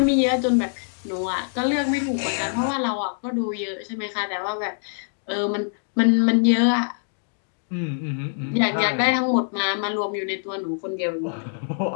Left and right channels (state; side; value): silent; right; digital silence